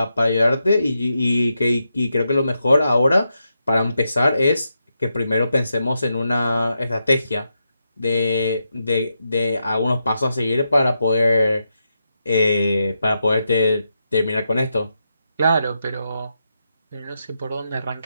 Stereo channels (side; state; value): both; inverted; correlation -0.85